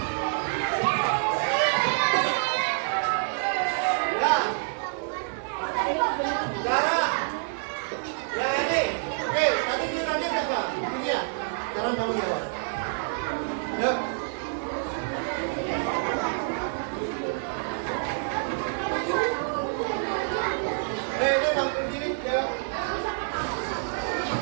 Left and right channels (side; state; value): left; silent; digital silence